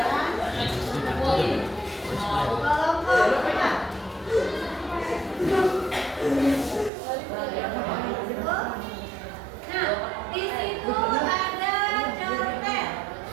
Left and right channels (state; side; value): drops out; left; at 6.9 s